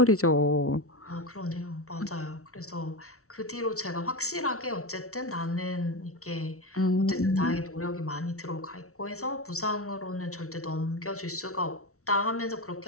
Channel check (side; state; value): right; late; 0.64 ms